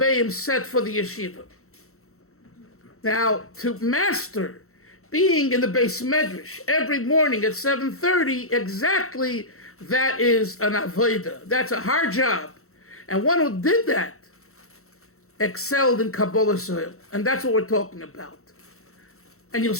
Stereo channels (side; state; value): right; late; 0.63 ms